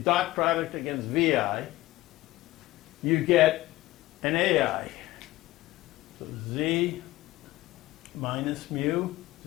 product against vi, you get an ai. So z minus mu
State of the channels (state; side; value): quieter; right; 17.4 dB